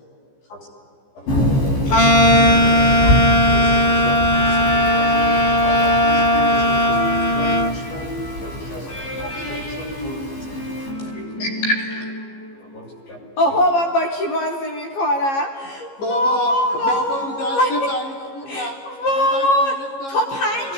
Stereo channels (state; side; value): late; right; 15 ms